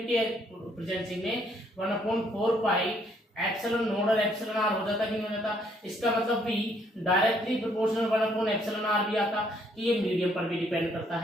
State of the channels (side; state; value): both; normal; correlation 0.68